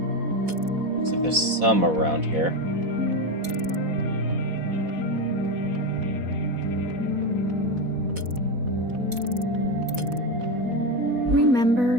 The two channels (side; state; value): left; late; 4.1 ms